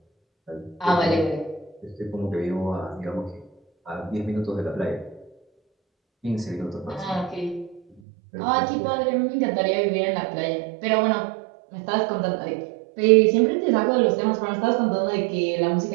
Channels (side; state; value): left; drops out; at 8.0 s